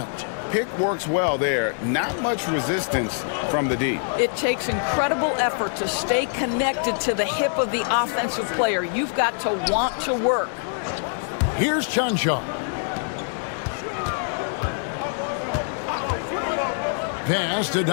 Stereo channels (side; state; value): right; silent; digital silence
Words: Pick works well there. Not much resistance from the D. It takes incredible effort to stay connected to the hip of the offensive player. You've got to want to work. Here's Chanshaw. Pass to